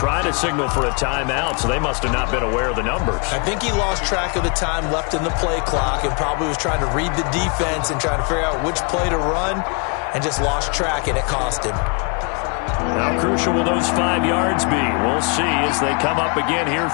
to signal for a timeout, so they must have not been aware of the numbers. I think he lost track of the time left in the play clock and probably was trying to read the defense and trying to figure out which play to run, and just lost track, and it cost him. How crucial will those 5 yards be? We'll see as they come up again here,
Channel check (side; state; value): right; quieter; 34.3 dB